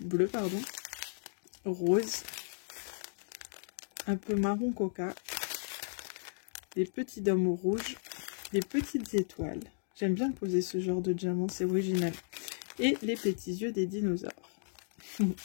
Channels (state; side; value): silent; right; digital silence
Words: bleus, pardon, rose, un peu marron coca, des petits dômes rouges, des petites étoiles. J'aime bien poser ce genre de diamant, c'est original. Et les petits yeux des dinosaures. Je